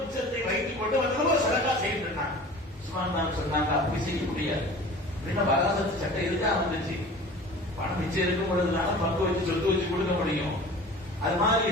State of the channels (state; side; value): normal; both; correlation 0.41